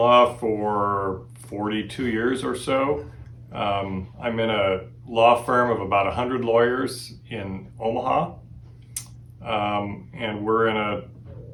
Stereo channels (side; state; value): both; identical; correlation 1.00